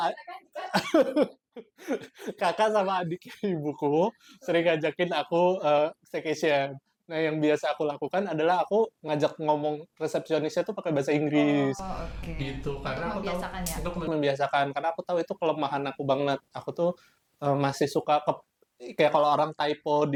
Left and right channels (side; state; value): both; identical; correlation 1.00